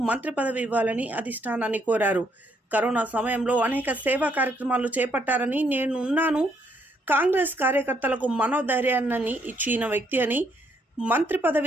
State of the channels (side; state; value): both; normal; correlation 0.71